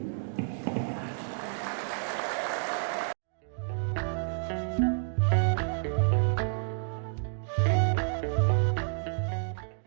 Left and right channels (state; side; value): silent; left; digital silence